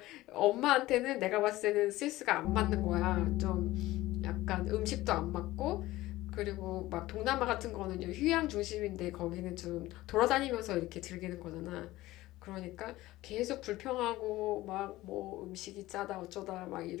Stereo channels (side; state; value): right; quieter; 17.3 dB